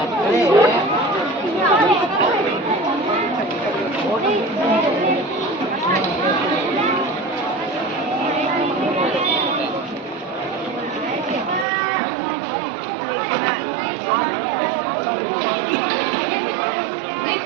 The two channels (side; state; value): left; drops out; at 11.7 s